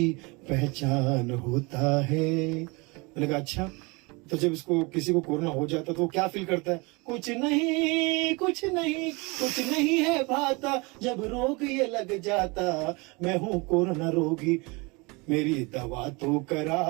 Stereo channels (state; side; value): quieter; left; 27.2 dB